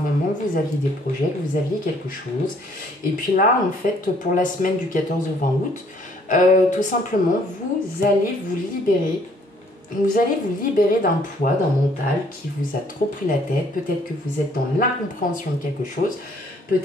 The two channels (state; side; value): normal; both; correlation 0.62